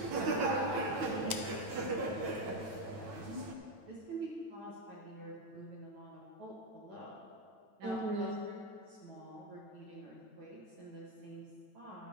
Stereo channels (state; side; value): late; left; 9.1 ms